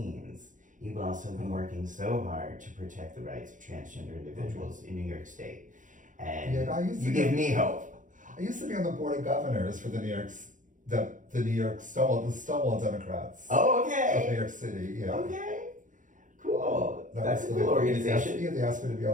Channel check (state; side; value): late; left; 0.37 ms